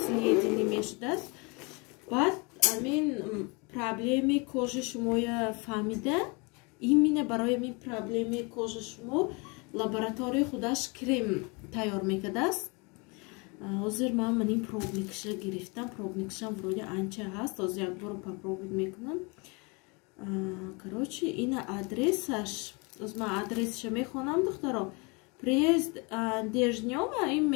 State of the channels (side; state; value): right; quieter; 29.9 dB